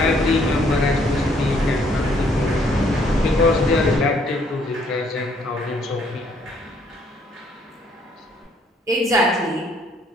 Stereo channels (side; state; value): both; normal; correlation 0.66